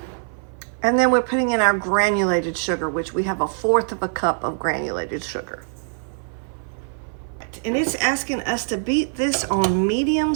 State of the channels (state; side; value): silent; left; 57 dB below the other